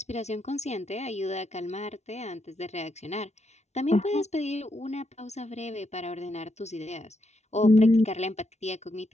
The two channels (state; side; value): late; right; 0.32 ms